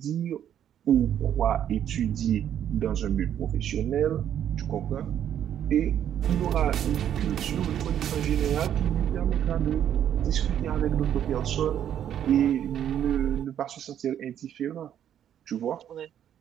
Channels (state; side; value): quieter; left; 10.0 dB